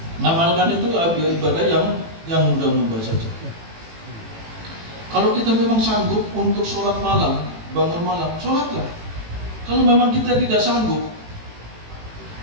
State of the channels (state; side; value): late; left; 18 ms